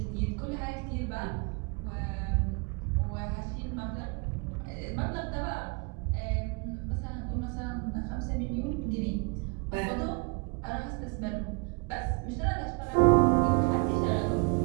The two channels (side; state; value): left; quieter; 31.3 dB